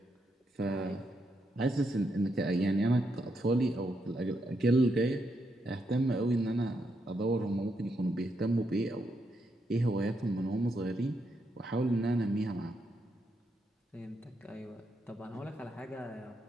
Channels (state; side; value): normal; both; correlation 0.81